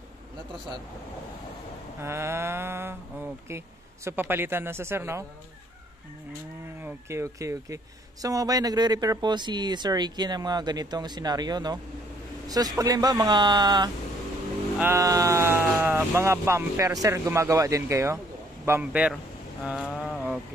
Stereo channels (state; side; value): normal; both; correlation 0.64